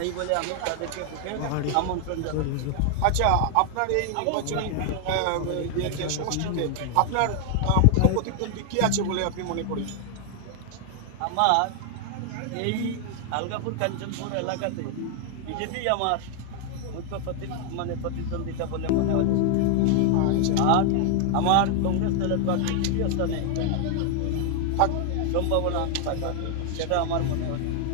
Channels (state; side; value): different; both; correlation 0.00